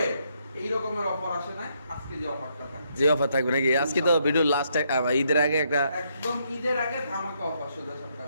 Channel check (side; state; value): both; inverted; correlation -0.75